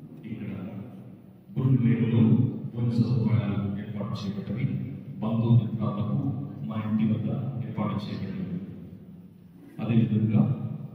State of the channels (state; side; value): identical; both; correlation 1.00